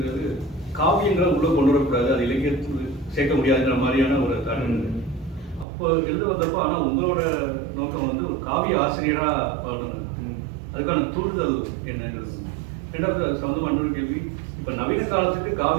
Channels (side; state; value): left; drops out; at 5.7 s